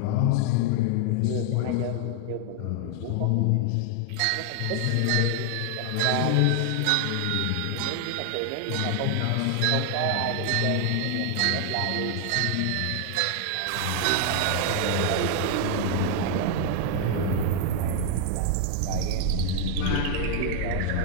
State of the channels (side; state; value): both; different; correlation 0.00